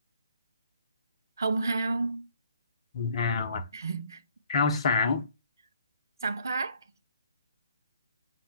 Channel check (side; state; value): both; inverted; correlation -0.62